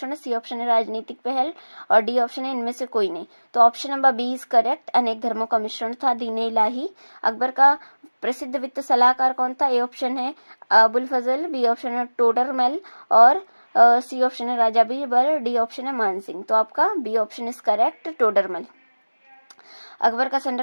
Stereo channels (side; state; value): both; inverted; correlation -1.00